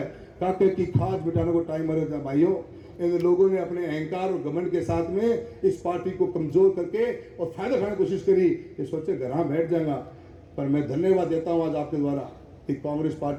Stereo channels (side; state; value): both; identical; correlation 1.00